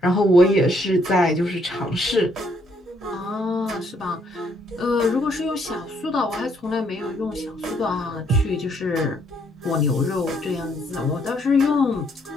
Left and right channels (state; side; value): normal; both; correlation 0.70